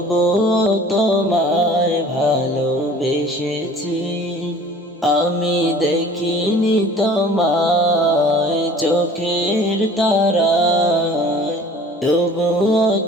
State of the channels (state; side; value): normal; both; correlation 0.47